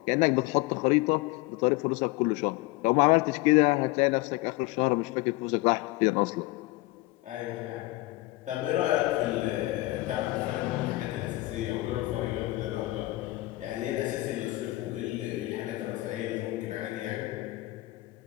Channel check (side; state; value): right; quieter; 20.0 dB